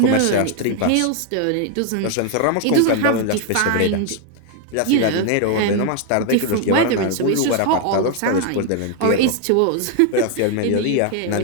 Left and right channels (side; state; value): both; different; correlation 0.00